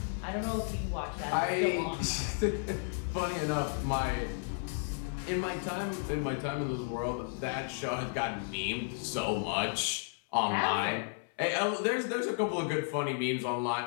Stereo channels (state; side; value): silent; right; 56 dB below the other